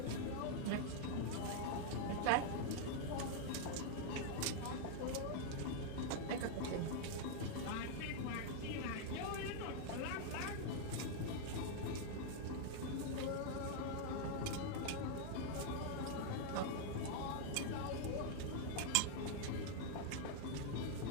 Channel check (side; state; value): both; different; correlation 0.00